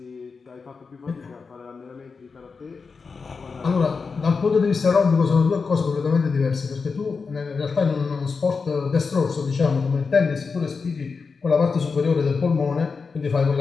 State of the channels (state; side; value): quieter; right; 4.9 dB